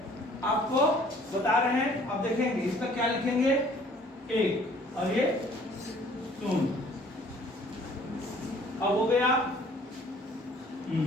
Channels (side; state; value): both; normal; correlation 0.55